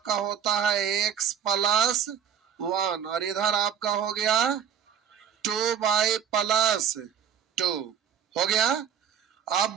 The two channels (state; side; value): quieter; left; 8.1 dB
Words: होता है x प्लस 1 और इधर आपका हो गया 2 बाई प्लस 2 हो गया। अब